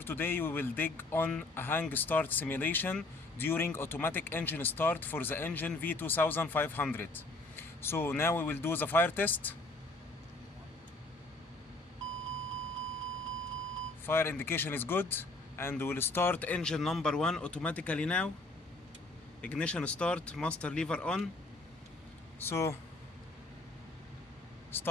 today we will dig on a hang start simulation during automatic engine start for the engine V2500. So now we will do the fire test. Fire indication is good, and we will start engine number 1 automatically now. Ignition start, master lever on. So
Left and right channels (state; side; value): quieter; right; 3.1 dB